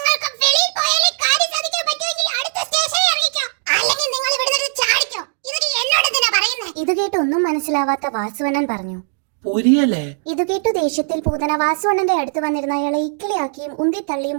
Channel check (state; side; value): silent; left; digital silence